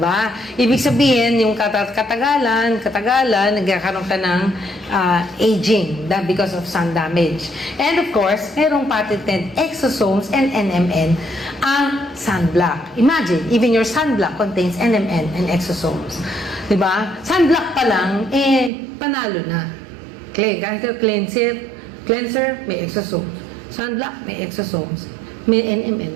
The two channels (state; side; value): drops out; left; at 18.7 s